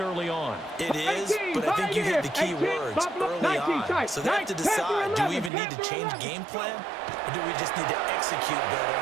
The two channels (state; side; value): drops out; left; at 5.5 s